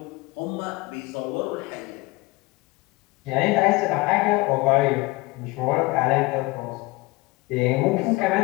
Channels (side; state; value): right; quieter; 22.5 dB